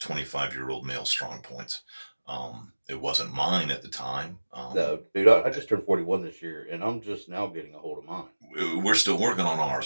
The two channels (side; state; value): both; inverted; correlation -1.00